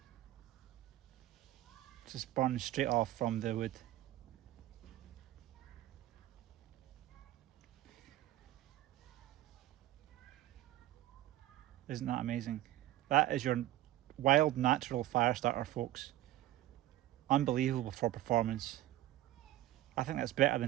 Just burns straight off from the wood. Isn't that amazing? That is your wild natural fire starter, folks. Unbelievable for performance. I think that's better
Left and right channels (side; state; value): left; quieter; 14.7 dB